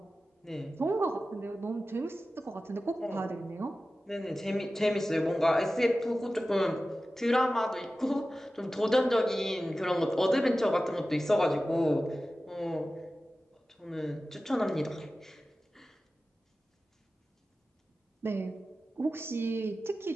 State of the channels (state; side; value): normal; both; correlation 0.95